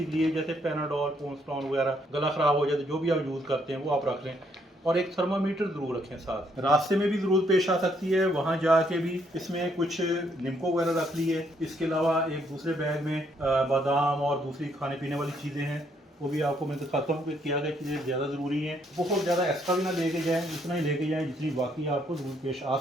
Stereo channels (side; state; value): both; normal; correlation 0.71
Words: के लिए, जैसे पैनाडोल, पोन्स्टॉन वगैरह, गला ख़राब हो जाए तो जो भी आप यूज़ करते हैं वो आप रख लें, और एक थर्मामीटर ज़रूर रखें साथ। रास्ते में भी ज़रूरत पेश आ सकती है, वहाँ जाके भी इसमें कुछ निम्को वगैरह रख ली है। इसके अलावा एक दूसरे बैग में बादाम और दूसरी खाने पीने वाली चीज़ें हैं, वो भी आपको मैं दिखाता हूँ कि क्या क्या चीज़ें ज़्यादा ज़रूरी हैं। बहुत ज़्यादा एक्स्ट्रा भी ना लेके जाएँ, उतना ही लेके जाएँ जितनी बाकी आपको ज़रूरत पेश आ